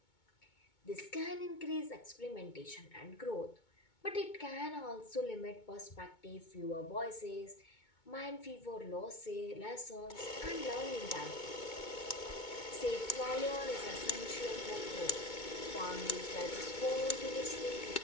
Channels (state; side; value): late; right; 2.2 ms